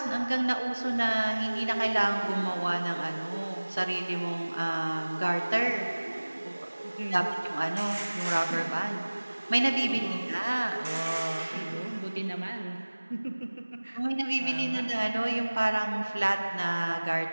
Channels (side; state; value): both; inverted; correlation -1.00